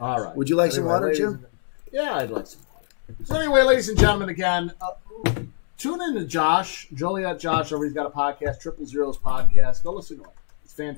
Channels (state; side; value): silent; right; digital silence